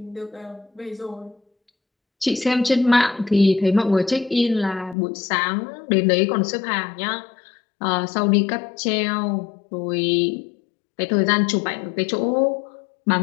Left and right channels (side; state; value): right; drops out; at 5.0 s